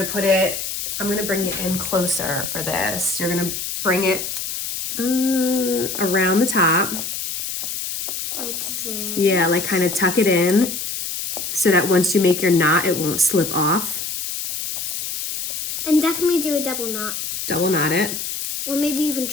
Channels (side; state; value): left; noise; hiss, 4 dB below the sound